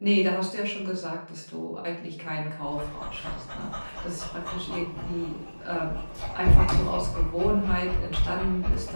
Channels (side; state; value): both; inverted; correlation -1.00